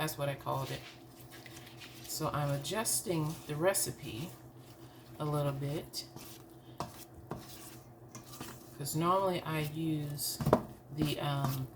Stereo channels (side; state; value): both; identical; correlation 1.00